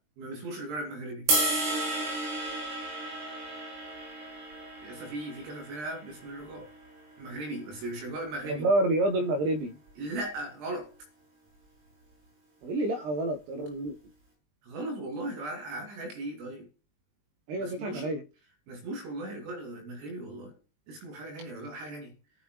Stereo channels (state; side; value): late; left; 20 ms